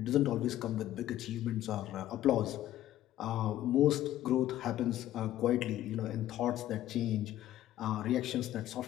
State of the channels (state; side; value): quieter; right; 13.4 dB